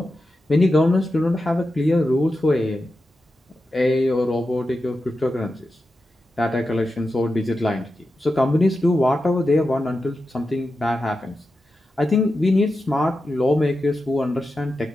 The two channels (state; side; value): normal; both; correlation 0.90